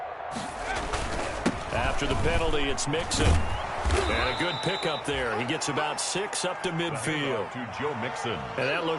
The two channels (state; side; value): identical; both; correlation 1.00